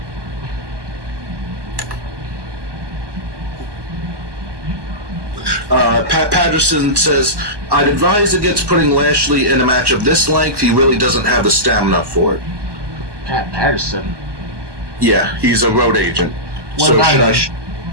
Pat Patterson says, I'd advise against putting Lashley in a match of this length. He really doesn't have the stamina for it. Pat Patterson? Yeah, he's a road agent. What about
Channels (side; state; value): left; late; 1.2 ms